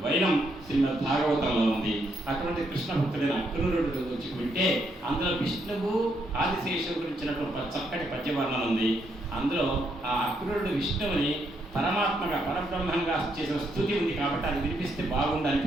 వైనం శ్రీమద్ భాగవతంలో ఉంది. అటువంటి కృష్ణ భక్తుడైన అక్రూరుడు గురించి వింటే అందులో విష్ణువు ఆదిశేషువు గురించినటువంటి చక్కటి పద్యవర్ణన ఉంది. అందులో ఆ అక్రూరుడు విష్ణువుని పరమాత్మగా పరబ్రహ్మంగా చేసిన స్థుతి ఉంది కాబట్టి అది వినిపిస్తే బాగుండు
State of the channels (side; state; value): both; normal; correlation 0.76